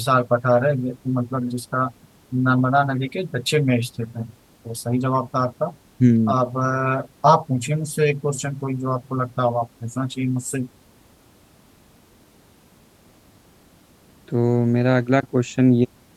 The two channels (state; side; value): identical; both; correlation 1.00